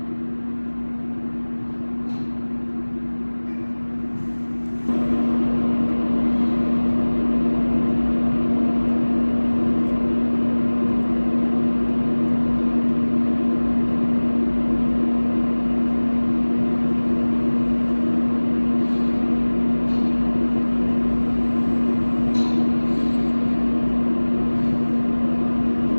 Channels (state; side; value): inverted; both; correlation -1.00